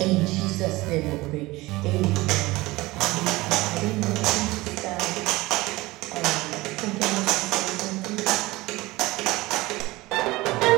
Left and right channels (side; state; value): left; quieter; 20.3 dB